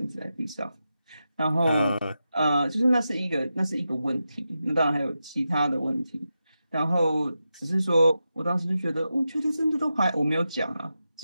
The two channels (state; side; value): inverted; both; correlation -0.90